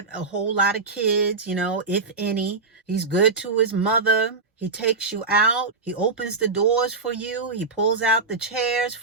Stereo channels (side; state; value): left; quieter; 4.1 dB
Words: a whole lot of kids, if any. He's good to his mother. He takes you out. He opens the doors for you. He pulls out the chairs